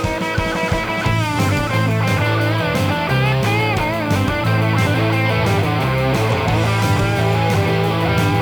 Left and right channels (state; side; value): noise; right; hiss, 26 dB below the sound